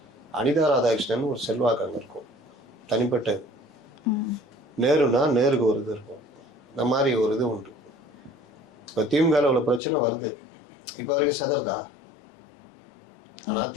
அனிதா ராதாகிருஷ்ணன் ஒரு செல்வாக்கு அங்கே இருக்கும், தனிப்பட்டது. நேருனா நேருக்கு ஒரு இது இருக்கும், இந்த மாதிரி ஒரு இது உண்டு. இப்போ திமுகவில் உள்ள பிரச்சனை வருது, இப்போ வரைக்கும் செதறதா? ஆனால்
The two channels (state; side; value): drops out; right; at 9.8 s